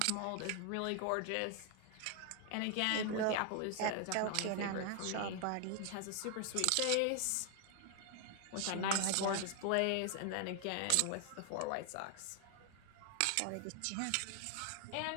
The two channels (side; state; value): both; different; correlation 0.00